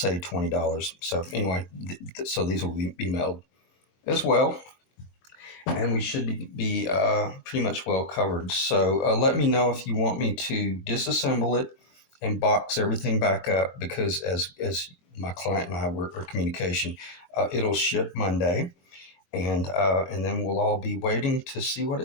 $20. So anyway, so these will be mailed as well, and we should be pretty much well covered. So let me know if you want me to disassemble it and box everything back up, because as my client and I were in communication, it'll ship Monday. And then we'll all be waiting to see what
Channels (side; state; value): right; late; 23 ms